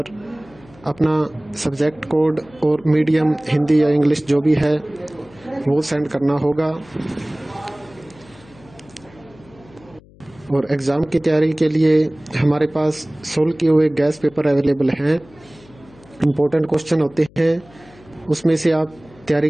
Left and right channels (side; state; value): left; noise; hum, 25 dB below the sound